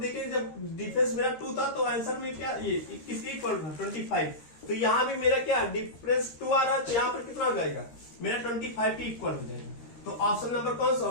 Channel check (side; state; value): right; late; 13 ms